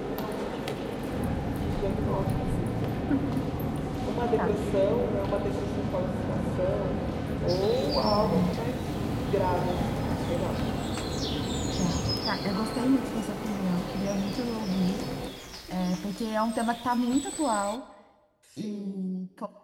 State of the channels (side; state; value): both; identical; correlation 1.00